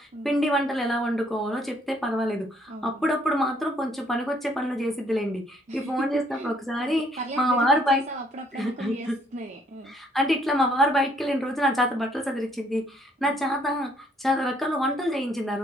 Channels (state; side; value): normal; both; correlation 0.66